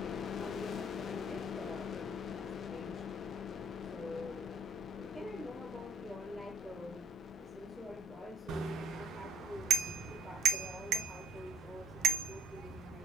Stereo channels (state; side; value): normal; both; correlation 0.60